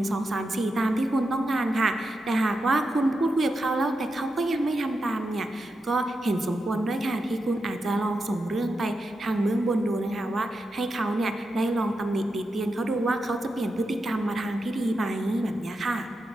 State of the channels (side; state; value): both; normal; correlation 0.87